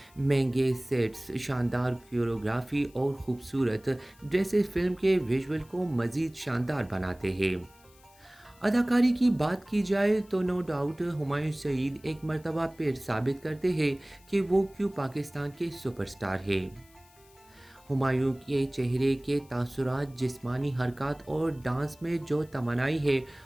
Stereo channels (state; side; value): noise; left; hiss, 28 dB below the sound